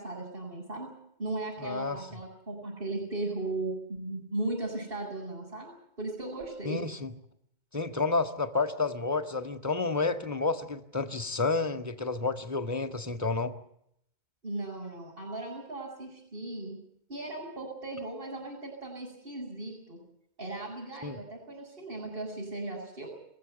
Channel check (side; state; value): left; late; 2.2 ms